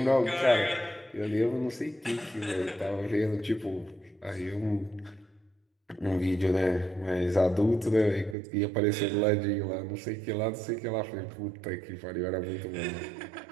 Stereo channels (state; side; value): drops out; left; at 8.3 s